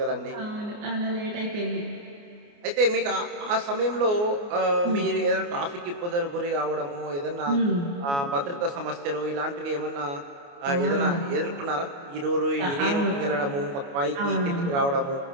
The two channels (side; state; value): left; late; 29 ms